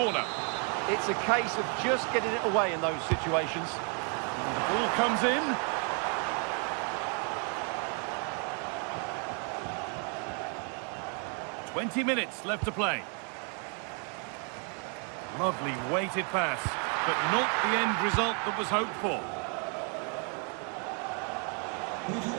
It's a case of just getting it away in those situations. And the ball comes in. "20 minutes left to play. Lovely weighted pass, but not the end result that was hoped for. We've had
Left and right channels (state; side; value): quieter; left; 39.3 dB